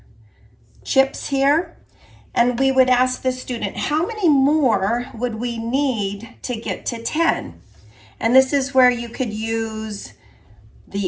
chips here. And we would ask the student, how many more would we need to get to 10? And this is where you could use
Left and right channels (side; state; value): both; identical; correlation 1.00